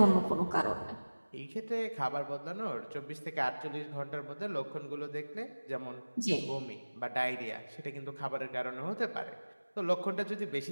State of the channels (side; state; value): both; inverted; correlation -1.00